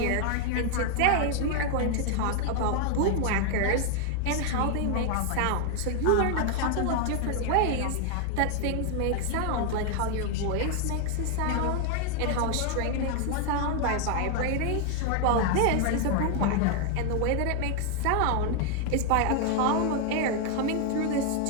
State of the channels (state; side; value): different; both; correlation 0.00